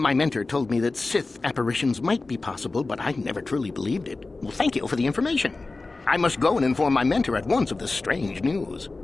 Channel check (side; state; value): right; quieter; 3.5 dB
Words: mentor told me that Sith apparitions might be possible, but I never truly believed it. Well, thank you for the information. I must go and inform my mentor at once of this strange news.